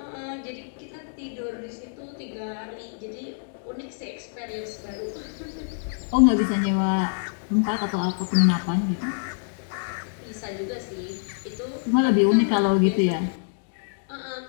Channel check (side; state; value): right; silent; digital silence